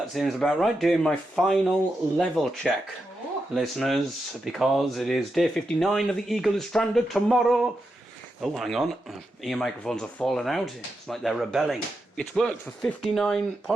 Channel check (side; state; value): both; normal; correlation 0.87